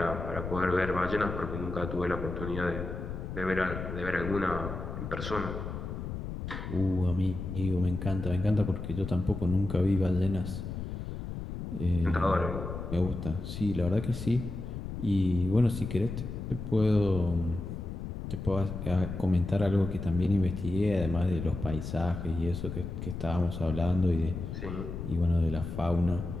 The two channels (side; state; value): left; noise; rumble, 6 dB below the sound